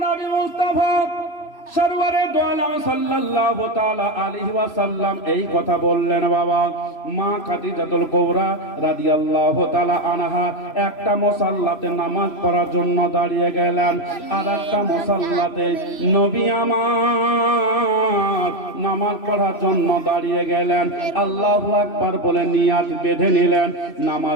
নবী মুস্তাফা সরওয়ারে দু আলম সাল্লাল্লাহু তাআলা আলাইহি ওয়াসাল্লাম এই কথা বললেন, বাবা মা খাদিজাতুল কুবরা রাদিয়াল্লাহু তাআলা আনহা একটা মুসাল্লাতে নামাজ পড়ার জন্য দাঁড়িয়ে গেলেন, আর একটা মুসাল্লাতে নবী আমার নামাজ পড়ার জন্য দাঁড়িয়ে গেলেন। আল্লাহু আকবার বলে নিয়াত বেঁধে নিলেন,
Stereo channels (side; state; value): right; late; 3.0 ms